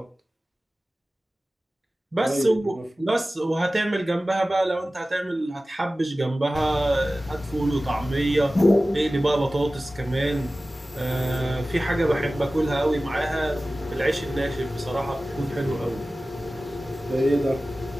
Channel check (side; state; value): both; normal; correlation 0.96